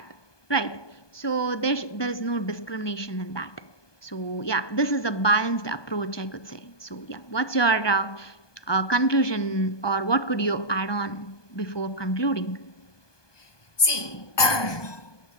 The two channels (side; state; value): right; late; 1.2 ms